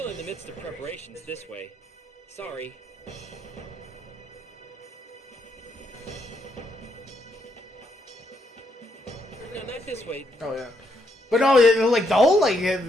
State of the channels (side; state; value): both; normal; correlation 0.76